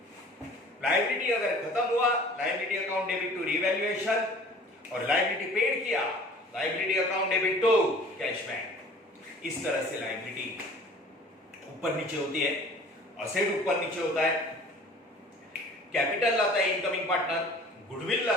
लायबिलिटी अगर खत्म हुआ, liability account debit to revaluation, और लायबिलिटी पेड किया, liability account debit to cash bank. इस तरह से लायबिलिटी ऊपर नीचे होती है, असेट ऊपर नीचे होता है, कैपिटल लाता है इनकमिंग पार्टनर, गुडविल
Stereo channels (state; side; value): normal; both; correlation 0.48